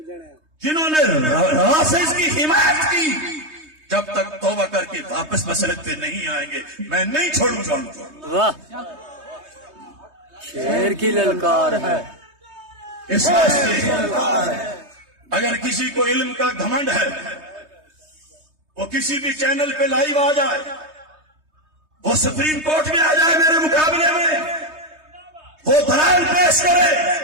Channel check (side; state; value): left; late; 3.2 ms